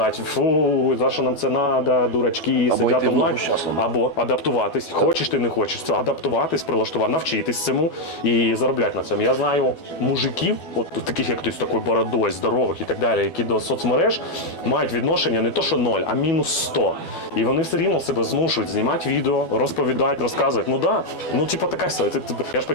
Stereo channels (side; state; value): right; late; 12 ms